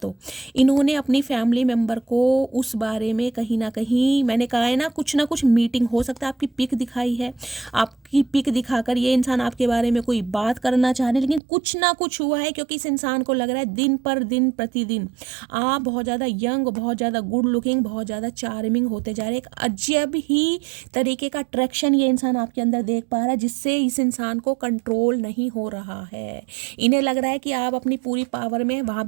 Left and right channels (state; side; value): drops out; left; at 11.4 s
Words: इन्होंने अपनी फैमिली मेम्बर को उस बारे में कहीं ना कहीं, मैंने कहा है ना कुछ मीटिंग हो सकता है, आपकी पिक दिखाई है, आपकी पिक दिखाकर ये इंसान आपके बारे में कोई बात करना चाह रहे हैं, लेकिन कुछ ना कुछ हुआ है, क्योंकि इस इंसान को लग रहा है दिन पर दिन प्रतिदिन आप बहुत ज़्यादा यंग, बहुत ज़्यादा गुड लुकिंग, बहुत ज़्यादा चार्मिंग होते जा रहे हैं। एक अजब ही तरीके का अट्रैक्शन ये इंसान आपके अंदर देख पा रहा है, जिससे इस इंसान को कंट्रोल नहीं हो रहा है। इन्हें लग रहा है कि आप अपनी पूरी पावर में, वहाँ